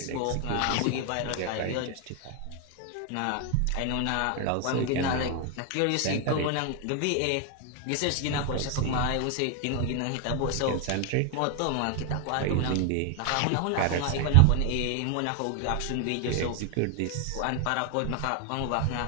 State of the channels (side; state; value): both; different; correlation 0.00